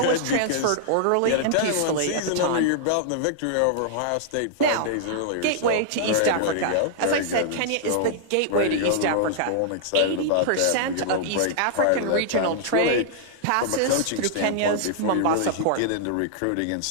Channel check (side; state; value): both; different; correlation -0.01